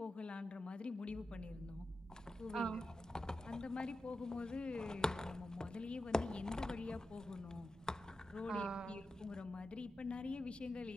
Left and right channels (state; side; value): normal; both; correlation 0.90